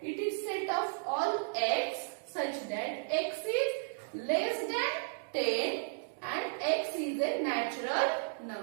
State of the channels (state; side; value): silent; left; digital silence